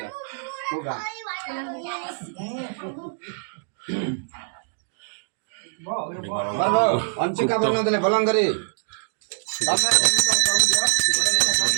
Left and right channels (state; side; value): silent; left; digital silence